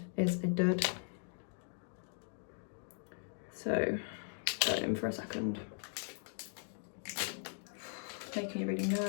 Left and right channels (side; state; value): right; silent; 52 dB below the other